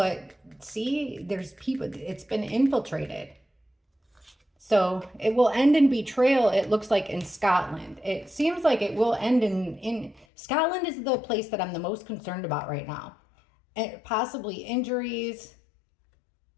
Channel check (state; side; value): drops out; right; at 10.2 s